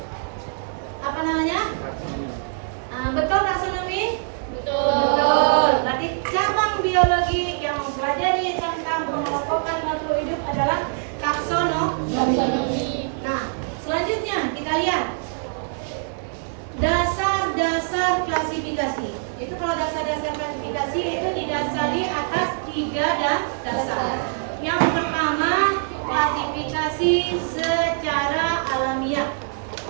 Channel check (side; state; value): left; silent; 63 dB below the other